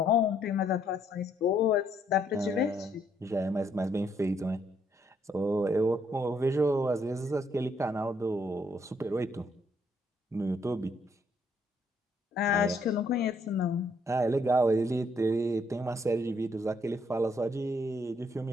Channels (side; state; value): both; normal; correlation 0.70